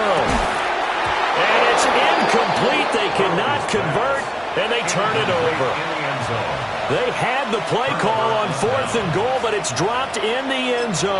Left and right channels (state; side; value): identical; both; correlation 1.00